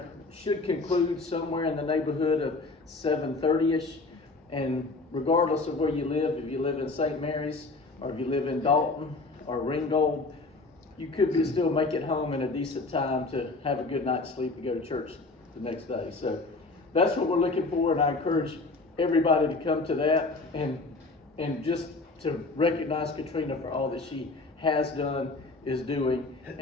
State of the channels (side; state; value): right; quieter; 3.5 dB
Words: should conclude somewhere in the neighborhood of 7:30ish. And regardless of where you live, if you live in St. Mary's or if you live in Dalton or Ringgold, you could still make it home in a decent time to have a good night's sleep and go to church the next day. So that's what we're looking for, and I encourage everybody to come to that and just to recognize Katrina for all that she has done, is doing,